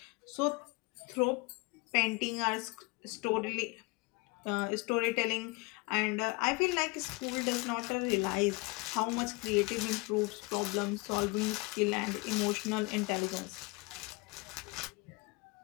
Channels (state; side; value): quieter; right; 26.2 dB